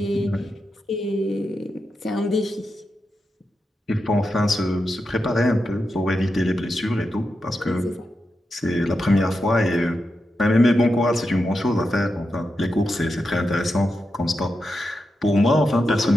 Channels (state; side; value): normal; both; correlation 0.88